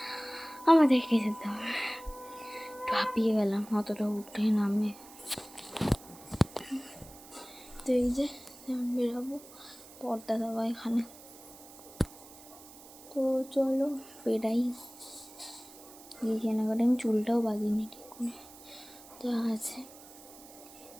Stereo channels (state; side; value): noise; right; hiss, 19 dB below the sound